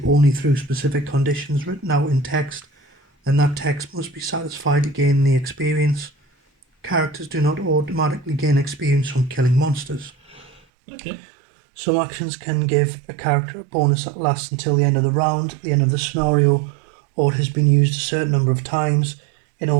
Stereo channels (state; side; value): drops out; left; at 10.6 s